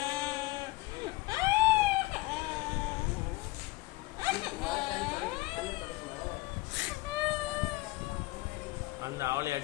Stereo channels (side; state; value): right; quieter; 20.9 dB